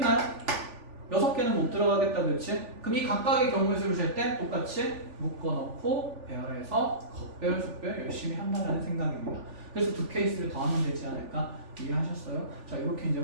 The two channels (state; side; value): late; left; 3.4 ms